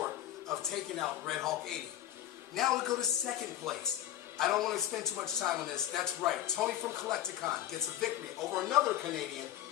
of taking out Red Hawk 80. Now we go to second place. I don't want to spend too much time on this. That's right, Tony from Collecticon gets a victory over another Canadian.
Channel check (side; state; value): right; quieter; 12.3 dB